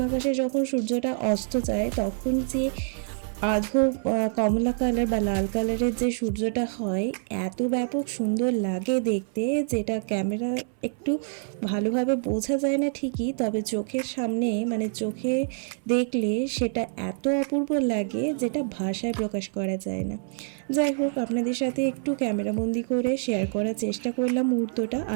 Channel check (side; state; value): left; silent; 61 dB below the other